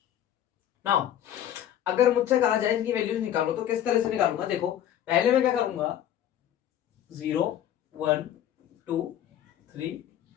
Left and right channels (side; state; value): right; quieter; 10.9 dB